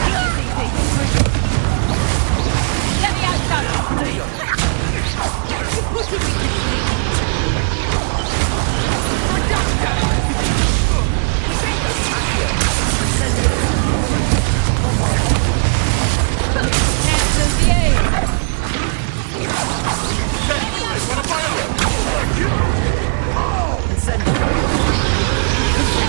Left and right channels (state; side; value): silent; left; 64 dB below the other